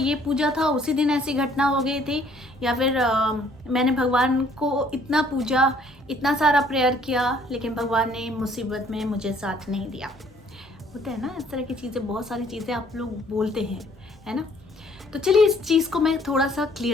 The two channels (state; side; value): normal; both; correlation 0.61